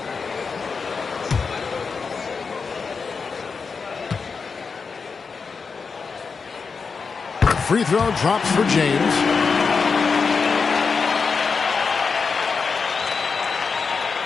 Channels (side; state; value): right; quieter; 5.2 dB